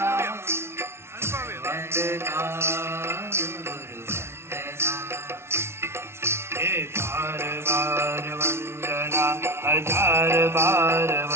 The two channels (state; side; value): late; left; 0.12 ms